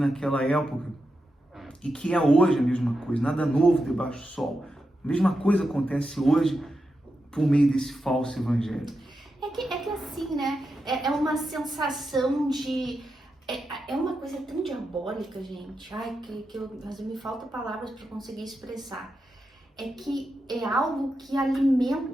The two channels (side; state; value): both; normal; correlation 0.88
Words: época, e que é hoje a mesma coisa, nada novo debaixo do sol. A mesma coisa acontece hoje por meio desse falso evangelho. É que assim, né? É uma sensação de... É uma coisa tão diabólica, gente. Ai, mas me faltam palavras para conseguir expressar. É que é algo que